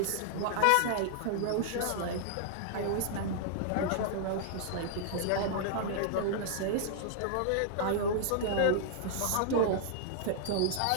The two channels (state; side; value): different; both; correlation -0.01